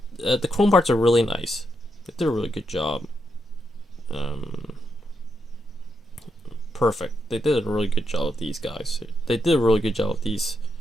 chrome parts are really nice. They did a really good job. Perfect. They did a really good job of these guys. They did a really good job of these.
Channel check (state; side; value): normal; both; correlation 0.82